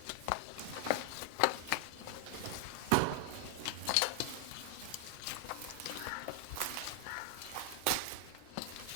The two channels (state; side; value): different; both; correlation 0.00